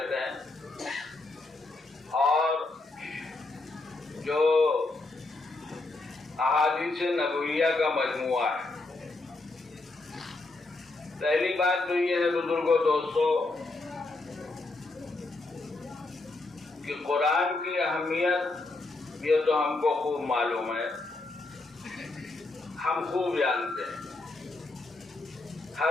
ہیں اور جو احادیث نبویہ کا مجموعہ ہے. پہلی بات تو یہ ہے بزرگوں دوستو کہ قرآن کی اہمیت یہ تو ہم کو خوب معلوم ہے, ہم خوب جانتے ہیں,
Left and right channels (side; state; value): right; quieter; 3.2 dB